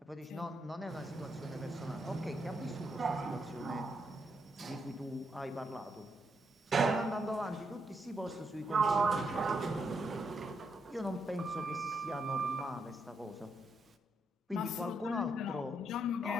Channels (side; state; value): both; normal; correlation 0.79